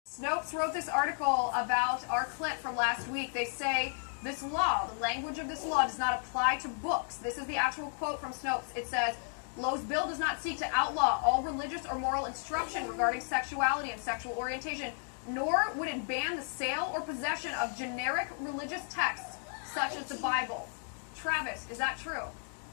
Snopes wrote this article about our clip from last week. They say this law, the language of this law, does not apply to books. This is the actual quote from Snopes. It says, Lowe's bill does not seek to outlaw all religious or moral instruction regarding sexuality and sexual orientation, nor would it ban the sale or possession of generic religious texts such as the Bible. Travis, is that true?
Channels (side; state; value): right; silent; 55 dB below the other